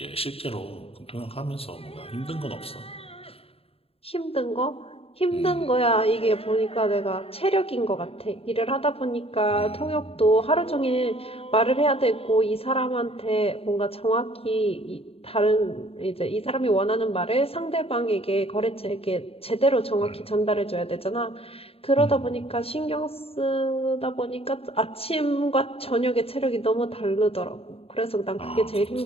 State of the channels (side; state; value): right; late; 0.28 ms